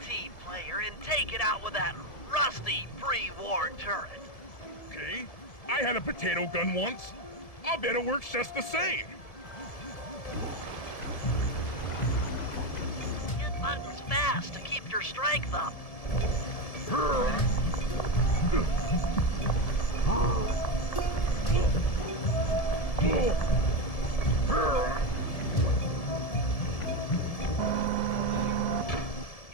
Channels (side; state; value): right; late; 1.7 ms